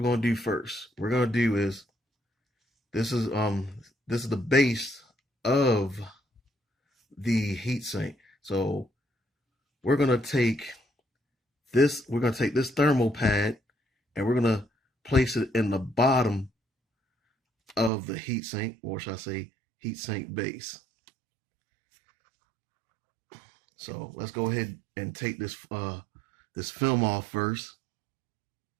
gonna do first. We're gonna do is this is the base of the heatsink. So we're gonna take this thermal pad and we're gonna place it in the bottom of the heatsink, or should I say heatsink base. So let's go ahead and take this film off first.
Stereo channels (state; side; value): drops out; left; at 17.9 s